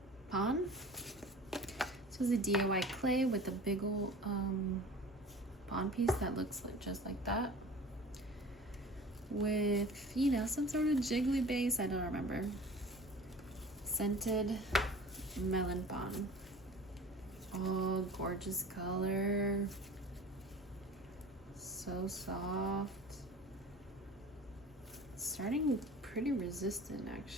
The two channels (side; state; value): both; normal; correlation 0.41